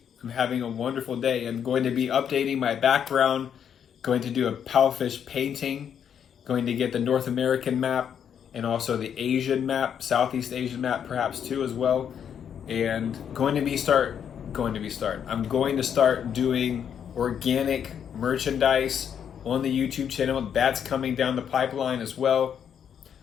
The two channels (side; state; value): right; quieter; 8.3 dB